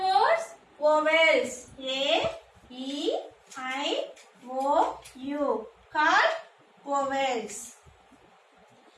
words vowels. A, E, I, O, U. Called vowels.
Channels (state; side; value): identical; both; correlation 1.00